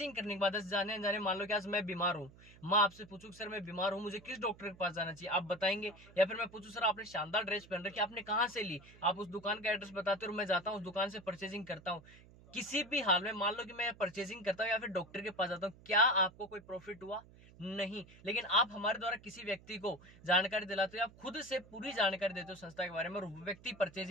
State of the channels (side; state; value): right; noise; hum, 22 dB below the sound